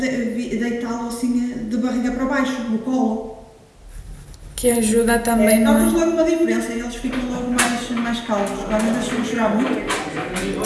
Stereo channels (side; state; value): both; identical; correlation 1.00